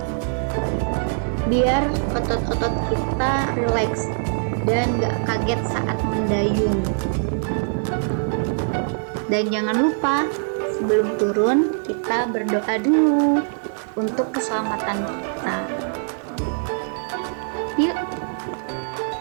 biar otot-otot kita rileks dan gak kaget saat mendayung. Dan jangan lupa sebelum turun kita berdoa dulu untuk keselamatan kita. Yuk,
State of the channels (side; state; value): left; silent; 59 dB below the other